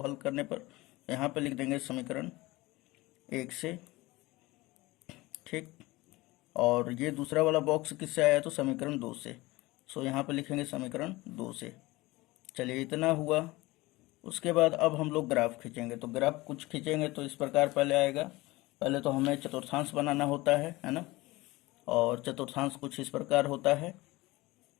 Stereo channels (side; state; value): right; quieter; 20.6 dB